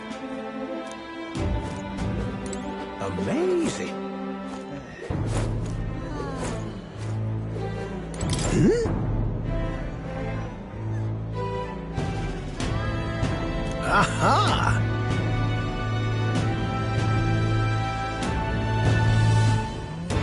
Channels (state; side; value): identical; both; correlation 1.00